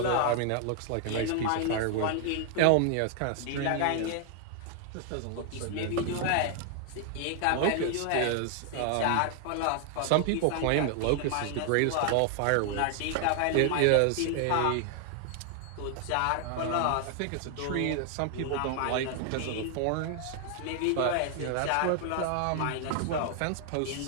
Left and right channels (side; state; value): both; different; correlation 0.00